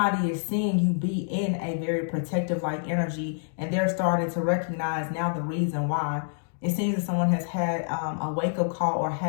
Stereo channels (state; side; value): silent; right; digital silence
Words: is seeing you be in a very protective like energy, and they're starting to recognize now the reason why. It seems that someone has had a wake-up call or